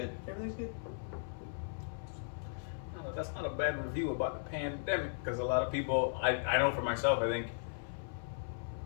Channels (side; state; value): right; silent; 53 dB below the other